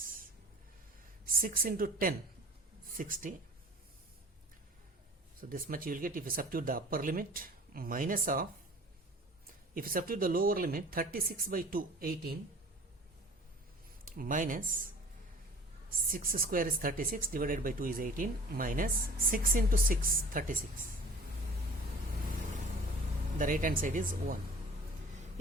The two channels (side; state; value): both; normal; correlation 0.46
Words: 6 into 10 60. So this much you will get if you substitute the upper limit, minus of, if you substitute the lower limit 36 by 2 18 minus 6 square is 36 divided by 2 is 18 minus 6 into 6 36. The right hand side is 1.